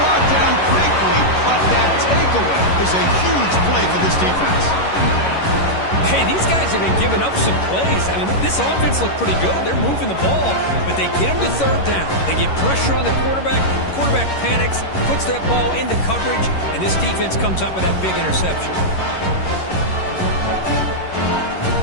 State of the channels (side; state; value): right; late; 11 ms